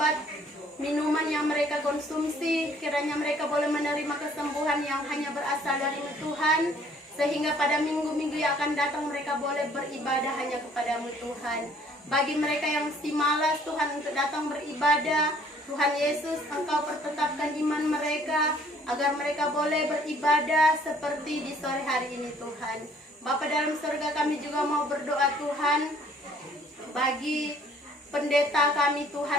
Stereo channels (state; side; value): normal; both; correlation 0.59